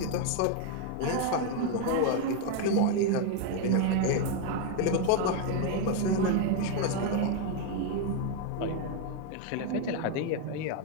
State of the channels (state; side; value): different; both; correlation 0.01